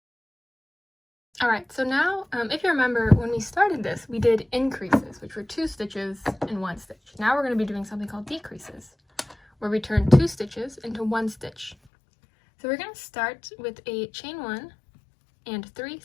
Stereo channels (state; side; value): drops out; right; at 11.8 s